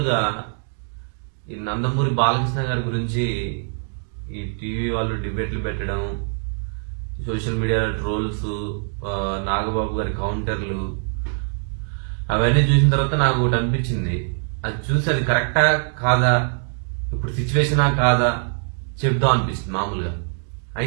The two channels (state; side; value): silent; left; 56 dB below the other